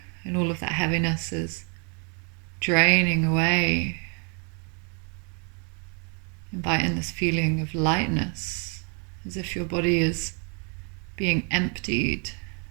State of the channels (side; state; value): left; quieter; 37.4 dB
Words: and all of that heaviness is draining away, invite in this feeling of lightness, as if your body is being emptied